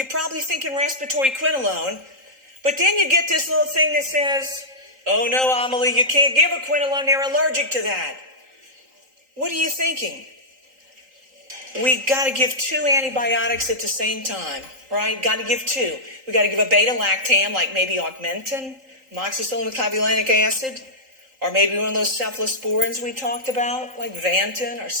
probably thinking respiratory quinolone, but then you get this little thing that says, oh no, Amelie, you can't give a quinolone, they're allergic to that. What are you thinking? We got to give 2 antibiotics at the same time, right? Got to give 2. We got to give a beta-lactam, like maybe augmentin, amoxicillin with clavulanic acid, or maybe one of those cephalosporins we talked about, like Vantin or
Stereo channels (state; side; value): late; left; 3.8 ms